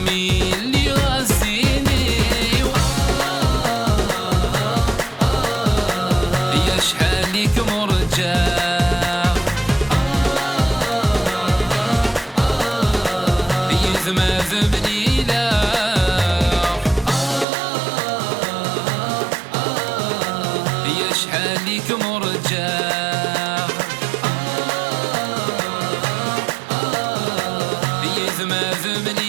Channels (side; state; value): left; drops out; at 17.4 s